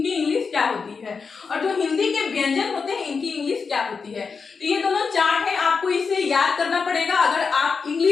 इंग्लिश क्या होती है, और जो हिंदी के व्यंजन होते हैं इनकी इंग्लिश क्या होती है। तो ये दोनों चार्ट है, आपको इसे याद करना पड़ेगा अगर आप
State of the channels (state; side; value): quieter; right; 5.2 dB